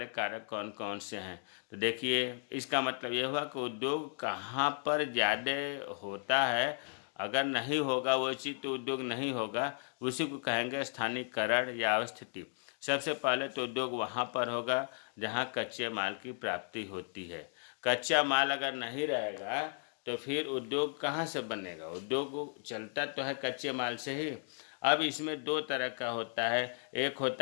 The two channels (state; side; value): silent; right; 54 dB below the other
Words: कारक कौन कौन से हैं। तो देखिए इसका मतलब ये हुआ कि उद्योग कहाँ पर ज़्यादा होता है, अगर नहीं होगा वो चीज़ तो उद्योग नहीं होगा, उसी को कहेंगे स्थानीयकरण या अवस्थिति। सबसे पहले तो उद्योग वहाँ पर होगा जहाँ कच्चे माल की प्राप्ति होती है। कच्चा माल अगर नहीं रहेगा तो फिर उद्योग कहाँ से बनेगा, उद्योग चलता तो है कच्चे माल से ही। अब इसमें 2 तरह का होता है, एक